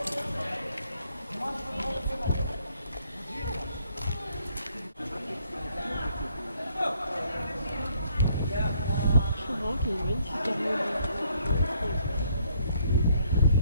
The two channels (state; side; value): inverted; both; correlation -0.67